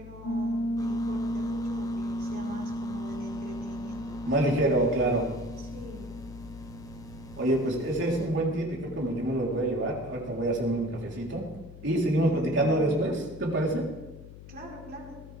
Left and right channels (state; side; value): noise; left; hum, 15 dB below the sound